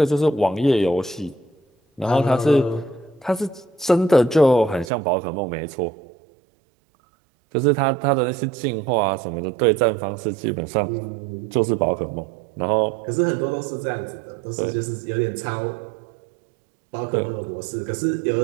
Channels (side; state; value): left; drops out; at 4.9 s